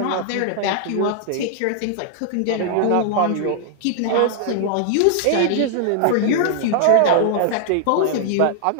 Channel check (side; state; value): both; different; correlation -0.01